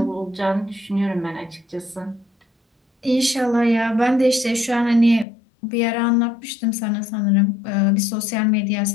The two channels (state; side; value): drops out; right; at 5.2 s